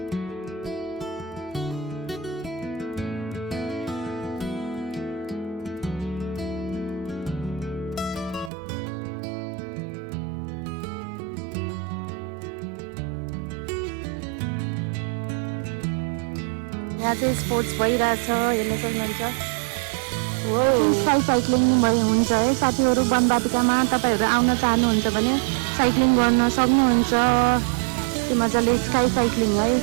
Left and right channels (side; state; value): left; drops out; at 8.5 s